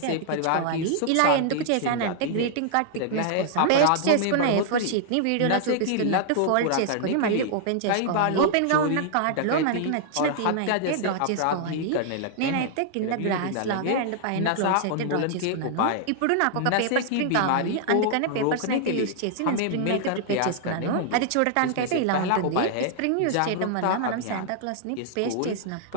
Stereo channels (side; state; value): both; different; correlation -0.01